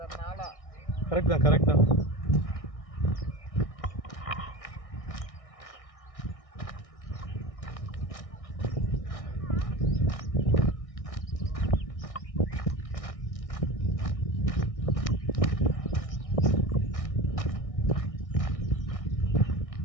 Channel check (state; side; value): late; right; 1.6 ms